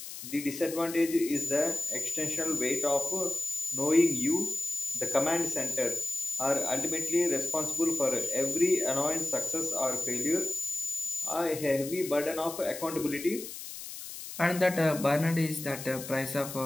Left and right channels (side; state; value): left; noise; hiss, 10 dB below the sound